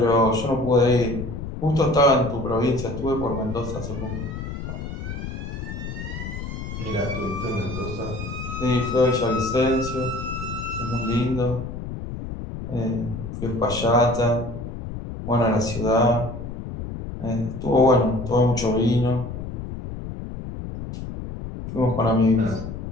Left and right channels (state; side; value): noise; left; rumble, 8 dB below the sound